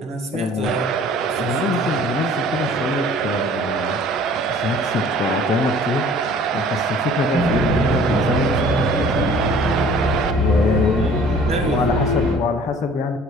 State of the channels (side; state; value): both; normal; correlation 0.51